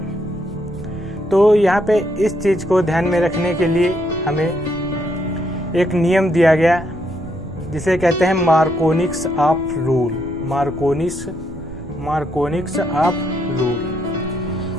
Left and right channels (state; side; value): noise; right; rumble, 14 dB below the sound